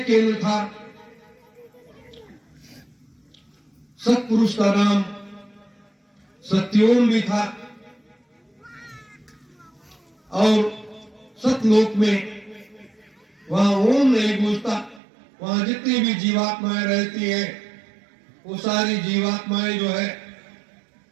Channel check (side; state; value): left; drops out; at 15.0 s